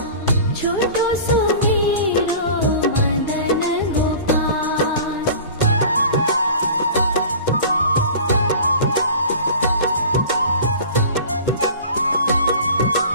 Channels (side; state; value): both; inverted; correlation -0.40